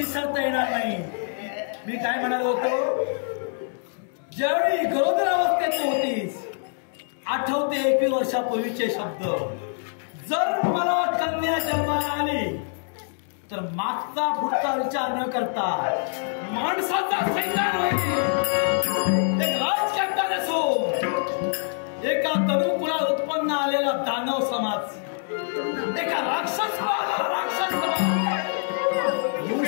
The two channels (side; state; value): right; silent; digital silence